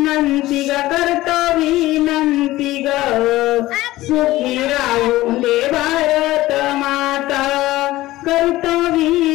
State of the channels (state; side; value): quieter; right; 17.0 dB